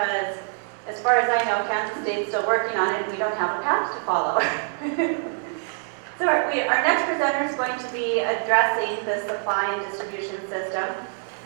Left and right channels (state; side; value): silent; left; 62 dB below the other